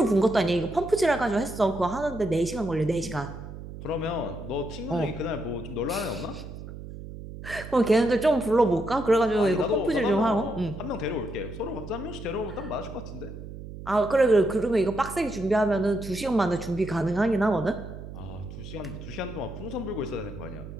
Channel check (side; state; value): right; noise; hum, 12 dB below the sound